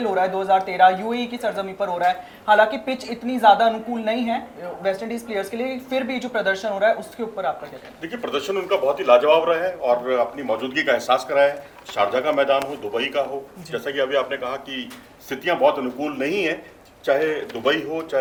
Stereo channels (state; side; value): identical; both; correlation 1.00